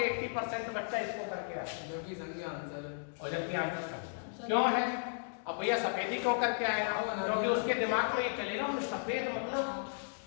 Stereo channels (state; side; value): silent; right; digital silence